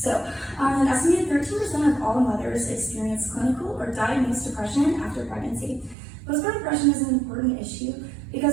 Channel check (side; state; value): left; drops out; at 6.0 s